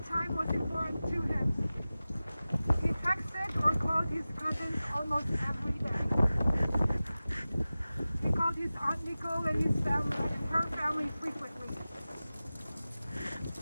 time was important to him. He texted or called his cousins almost every day. He called his Aunt Nicole and his family and her family frequently.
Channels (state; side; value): inverted; both; correlation -0.96